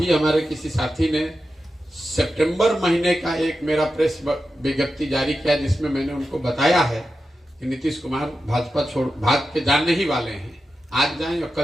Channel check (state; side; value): normal; both; correlation 0.91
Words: हमारे किसी साथी ने सितंबर महीने का एक मेरा प्रेस विज्ञप्ति जारी किया जिसमें मैंने उनको बताया है कि नीतीश कुमार भाजपा भाग के जाने ही वाले हैं। आज जाएं या